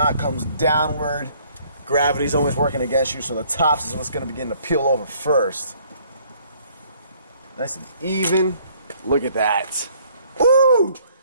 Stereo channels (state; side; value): inverted; both; correlation -0.61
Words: comes downward, gravity's always working against you, so the tops is what's going to begin to peel over first. Nice and even. Look at that. Ooh!